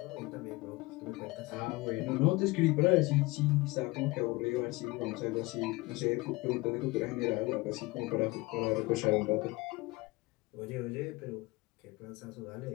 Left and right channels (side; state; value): right; quieter; 22.6 dB